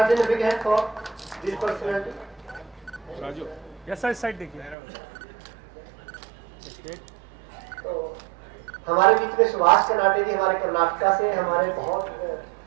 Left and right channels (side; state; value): left; drops out; at 4.8 s